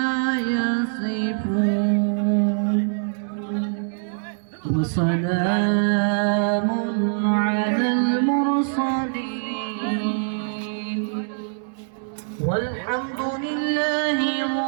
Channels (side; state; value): left; silent; digital silence